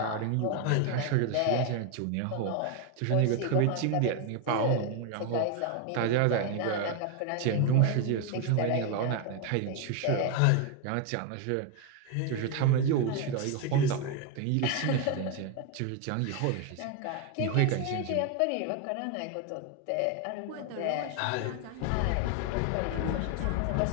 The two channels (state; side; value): different; both; correlation 0.01